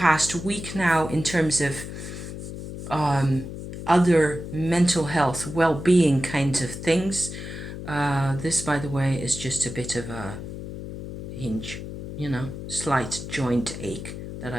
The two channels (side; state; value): left; noise; hum, 9 dB below the sound